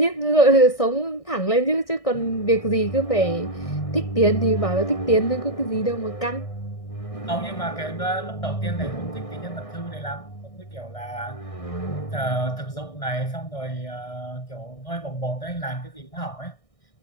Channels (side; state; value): right; late; 1.6 ms